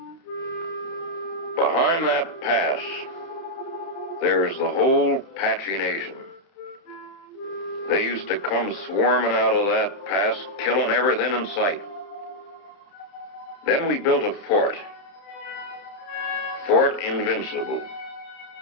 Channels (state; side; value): late; right; 30 ms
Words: Behind that pass, there's the whole Apache Nation. They used to come swarming out of that pass, killing everything in sight. Then we built a fort. Fort Invincible.